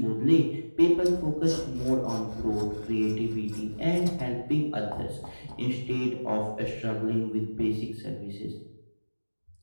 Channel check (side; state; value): both; inverted; correlation -1.00